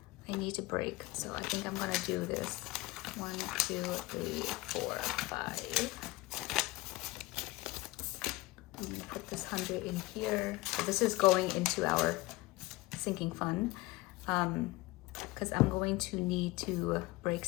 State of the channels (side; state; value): right; quieter; 21.0 dB